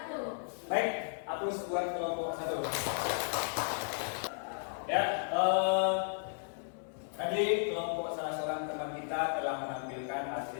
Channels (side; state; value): right; silent; 55 dB below the other